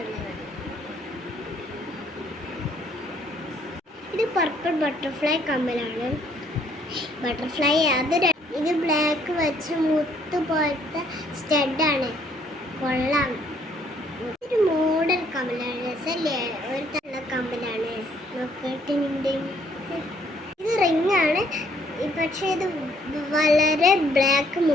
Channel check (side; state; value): both; normal; correlation 0.65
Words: ഇത് പർപ്പിൾ ബട്ടർഫ്ലൈ കമ്മലാണ്. ബട്ടർഫ്ലൈ ഇത് ബ്ലാക്ക് വെച്ച് മുത്ത് പോലത്തെ സ്റ്റഡാണ്, കൊള്ളാം. ഒരു മോഡൽ കമ്മലാണ്, രസല്ലേ, ഒരു തള്ള കമ്മലാണ്. നോക്കിയിട്ടുണ്ട്. ഇത് റിങ്ങാണ്, പക്ഷേ ഇത് വളരെ ബ്ലാക്ക്